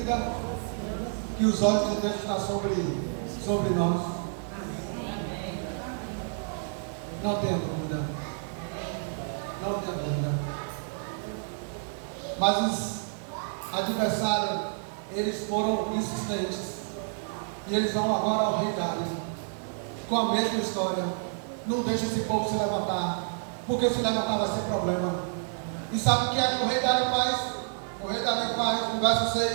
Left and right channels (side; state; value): left; silent; 58 dB below the other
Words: que os olhos de Deus estão sobre nós? Não tenho dúvida. Não tenho dúvida. Mas os adversários, eles foram insistentes. E eles vão agora ao rei Dário, com a mesma história. Não deixa esse povo se levantar, porque se levantar vai ser problema. E sabe o que é que o rei Dário faz? O rei Dario faz no verso